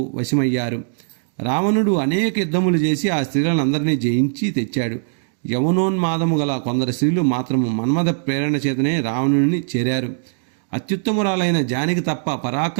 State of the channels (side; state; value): left; silent; digital silence